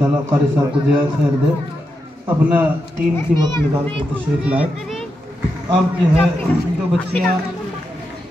कारी साहब को दिया खैर दे, अपना कीमती वक्त निकाल कर तशरीफ़ लाए। अब जो है जो बच्चियाँ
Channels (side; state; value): both; normal; correlation 0.86